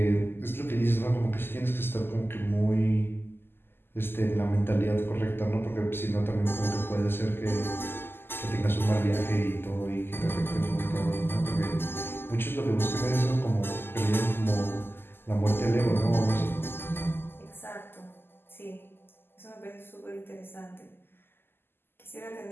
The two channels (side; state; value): right; late; 0.11 ms